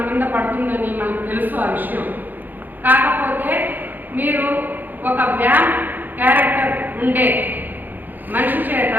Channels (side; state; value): left; late; 0.087 ms